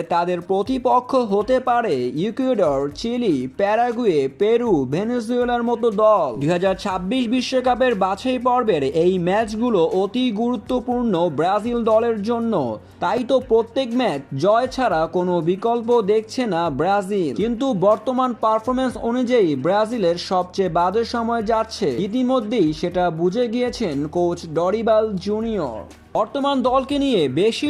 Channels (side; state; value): both; identical; correlation 1.00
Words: তাদের প্রতিপক্ষ হতে পারে ইকুয়েডর, চিলি, প্যারাগুয়ে, পেরু, ভেনেজুয়েলার মতো দল। 2026 বিশ্বকাপের বাছাই পর্বের এই ম্যাচগুলো অতি গুরুত্বপূর্ণ ব্রাজিল দলের জন্য। তাই তো প্রত্যেক ম্যাচ জয় ছাড়া কোনো বিকল্প দেখছে না ব্রাজিল। কিন্তু বর্তমান পারফরমেন্স অনুযায়ী ব্রাজিলের সবচেয়ে বাজে সময় যাচ্ছে, ইতিমধ্যেই সেটা বুঝে গিয়েছেন কোচ ডরিবাল জুনিয়র। বর্তমান দলকে নিয়ে বেশি